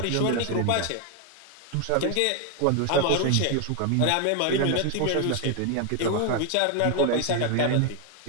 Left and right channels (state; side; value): different; both; correlation 0.01